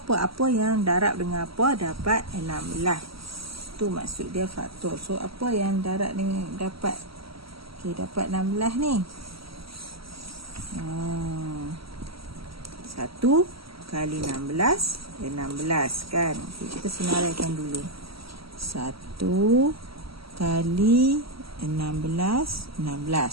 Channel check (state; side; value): late; left; 0.75 ms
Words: Apa yang darab dengan apa dapat 16. Tu maksud dia faktor. So apa yang darab dengan dapat? Okey, dapat 16 ni. 1 kali 16 16 kan. Okay, kita senaraikan dulu. 1 kali 16